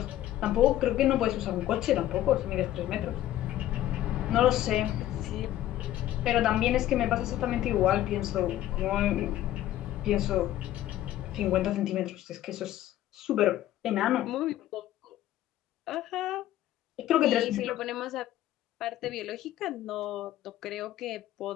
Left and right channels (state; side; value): quieter; right; 13.4 dB